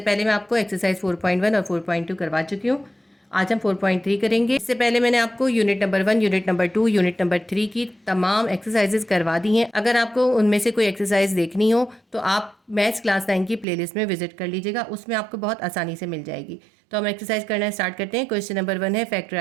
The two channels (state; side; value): drops out; left; at 13.7 s